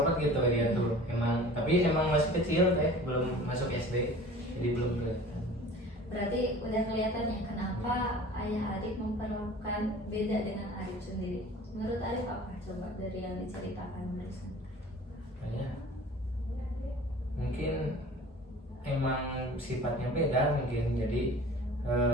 gitu dia tuh, emang, tapi emang masih kecil kayak belum masuk SD, jadi belum kelihatan. Berarti udah kelihatan ya kenapa ayah Arif memperlakukan beda dengan Arif sendiri. Menurut Arif apa? Coba dari yang diceritakan barusan. Kayak mungkin emang sifatnya beda mungkin, jadi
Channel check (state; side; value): normal; both; correlation 0.43